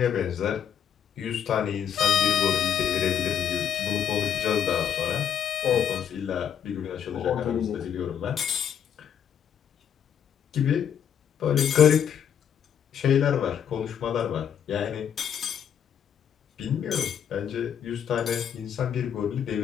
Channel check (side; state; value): right; quieter; 8.7 dB